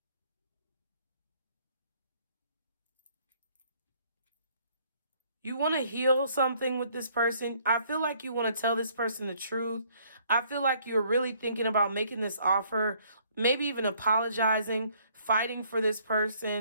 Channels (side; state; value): both; inverted; correlation -0.64